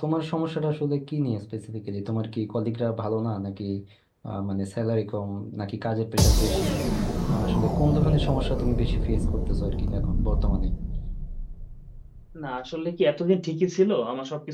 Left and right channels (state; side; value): identical; both; correlation 1.00